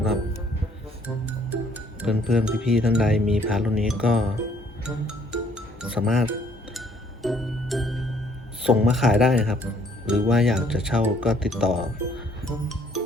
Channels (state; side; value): normal; both; correlation 0.63